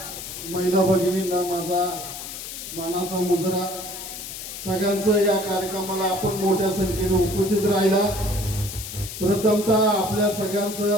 महिला भगिनींना माझा मानाचा मुजरा। सगळ्यांचं या कार्यक्रमाला आपण मोठ्या संख्येने उपस्थित राहिला। प्रथमतः आपल्या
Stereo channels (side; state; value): left; noise; hiss, 9 dB below the sound